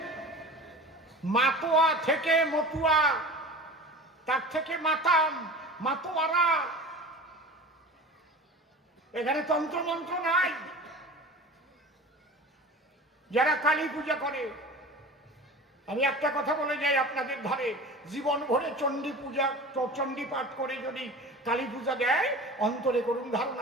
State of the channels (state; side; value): normal; both; correlation 0.36